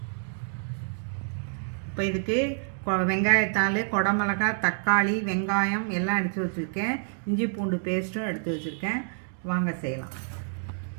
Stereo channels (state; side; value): silent; left; 59 dB below the other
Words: இப்போ இதுக்கு வெங்காயத்தாள், குடமிளகாய், தக்காளி, வெங்காயம் எல்லாம் எடுத்து வச்சுருக்கேன். இஞ்சி பூண்டு பேஸ்ட்டும் எடுத்து வச்சுருக்கேன். வாங்க செய்யலாம்.